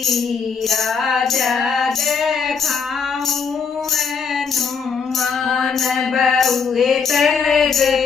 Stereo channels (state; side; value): quieter; right; 5.9 dB